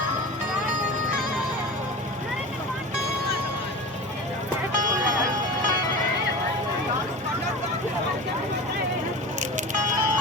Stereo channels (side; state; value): both; normal; correlation 0.31